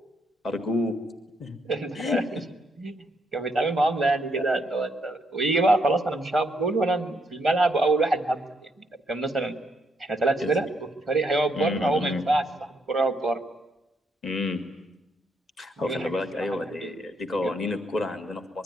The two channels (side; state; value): both; normal; correlation 0.75